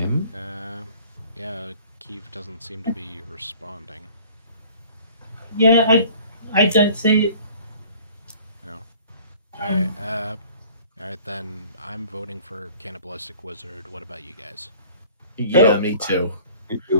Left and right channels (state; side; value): inverted; both; correlation -0.50